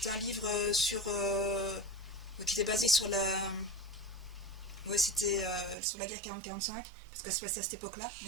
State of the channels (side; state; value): left; drops out; at 5.8 s